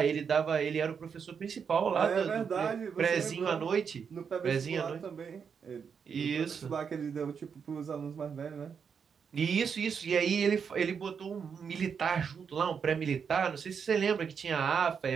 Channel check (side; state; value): left; quieter; 6.6 dB